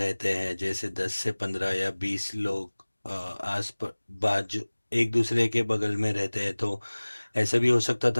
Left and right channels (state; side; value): inverted; both; correlation -1.00